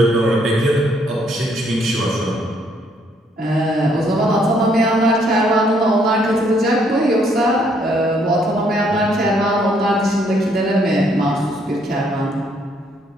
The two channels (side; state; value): both; normal; correlation 0.69